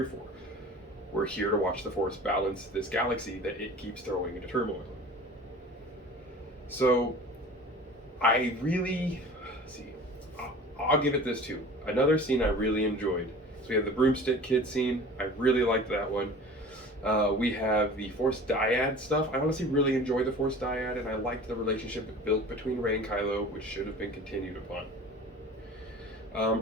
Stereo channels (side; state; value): both; normal; correlation 0.41